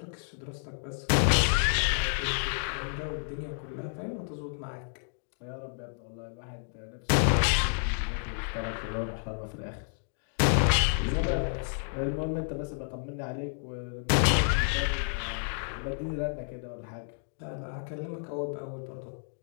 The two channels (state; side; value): silent; right; digital silence